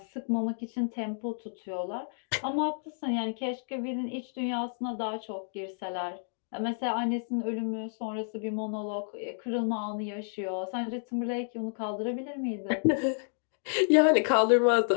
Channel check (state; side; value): silent; right; digital silence